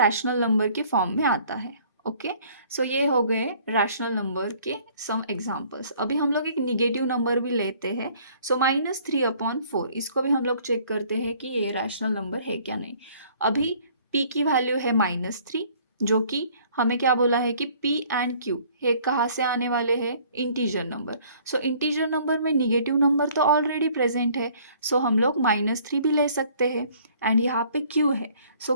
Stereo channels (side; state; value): both; inverted; correlation -0.57